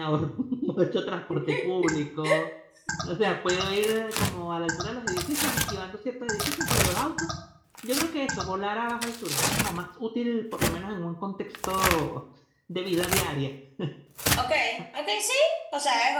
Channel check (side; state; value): both; identical; correlation 1.00